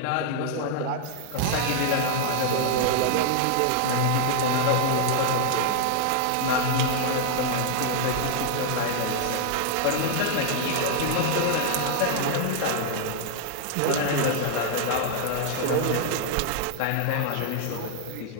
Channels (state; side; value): different; both; correlation 0.00